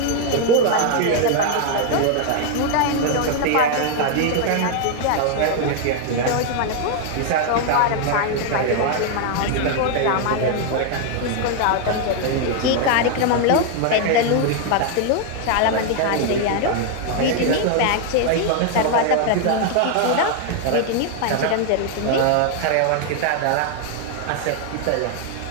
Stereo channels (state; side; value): different; both; correlation 0.00